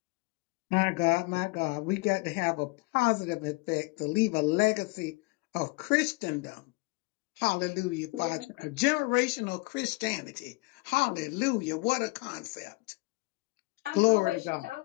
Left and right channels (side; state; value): right; quieter; 25.8 dB